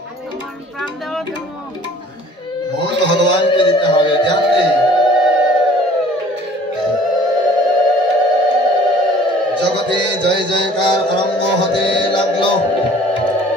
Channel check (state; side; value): normal; both; correlation 0.51